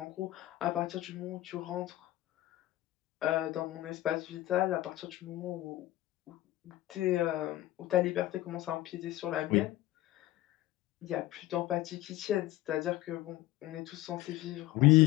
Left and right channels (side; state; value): right; quieter; 16.1 dB